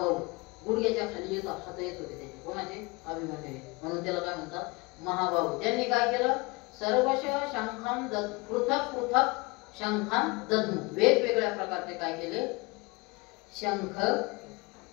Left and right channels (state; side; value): quieter; right; 25.7 dB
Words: गुडघ्याच्या खाली येतो, हात येत होते त्याचे, कोणाचे, अभिमन्यू, म्हणून त्याला काय म्हणतात, महाबाहू. त्यांनी काय केलं, सर्वश शंखान पृथक पृथक शंखान दद्मु, वेगवेगळ्या प्रकारचे काय केले, शंख